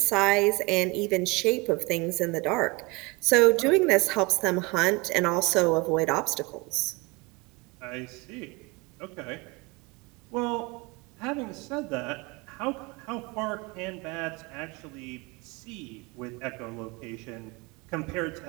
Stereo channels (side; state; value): left; quieter; 25.2 dB